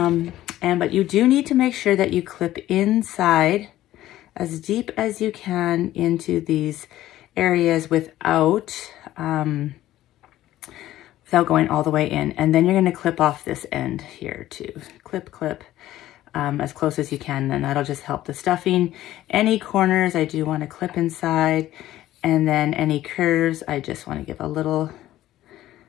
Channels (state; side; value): quieter; right; 14.3 dB